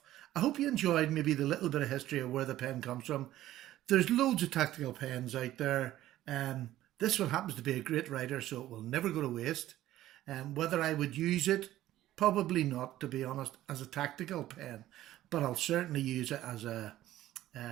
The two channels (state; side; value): quieter; left; 14.2 dB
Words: I hope you enjoyed maybe the little bit of history of where the pen comes from. There's loads of tactical pens out there. This one happens to be a great writer, so it will never go to waste. Whether I would use it, probably not, to be honest, as a tactical pen, but I'll certainly use it as a